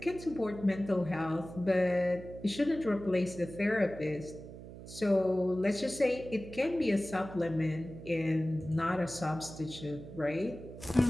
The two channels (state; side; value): noise; right; hum, 14 dB below the sound